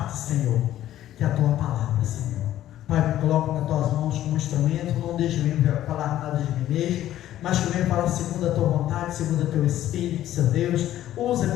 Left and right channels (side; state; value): right; quieter; 12.9 dB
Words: Senhor, que é a Tua palavra, Senhor. Pai, me coloco nas Tuas mãos como instrumento, não deixe eu falar nada de mim mesmo, mas que eu venha falar segundo a Tua vontade, segundo o Teu Espírito, Senhor Deus.